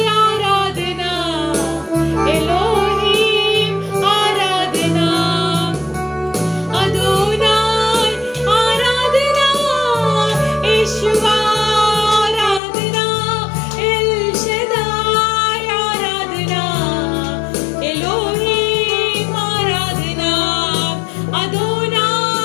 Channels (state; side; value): drops out; right; at 12.6 s